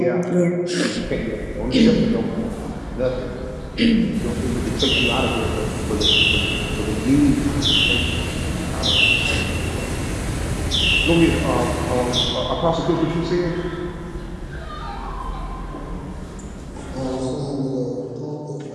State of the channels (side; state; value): both; identical; correlation 1.00